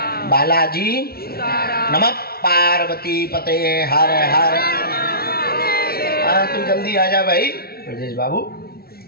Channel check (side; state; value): right; late; 0.44 ms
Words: बालाजी, नमः पार्वती पते हर हर। हाँ, तू जल्दी आ जा भाई ब्रजेश बाबू।